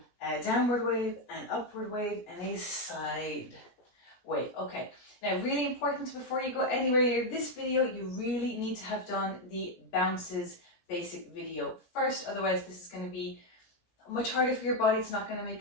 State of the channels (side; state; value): right; late; 17 ms